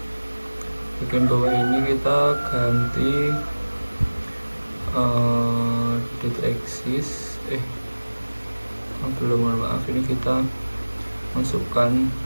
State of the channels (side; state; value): both; inverted; correlation -1.00